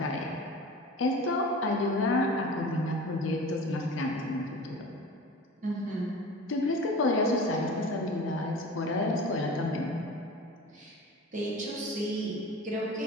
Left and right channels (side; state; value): both; normal; correlation 0.37